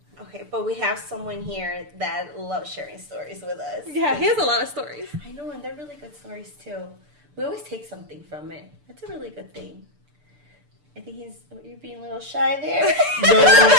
Okay, but we have someone here that loves sharing stories with us. Yeah, he has a lot of stories. I know, and they're really good stories too. We always take something from it. That's a really good thing. I think you're being a little shy there. No.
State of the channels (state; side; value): late; left; 6.8 ms